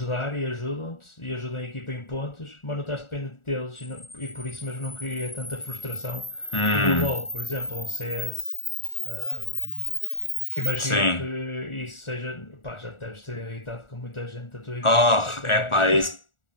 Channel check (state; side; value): late; right; 1.4 ms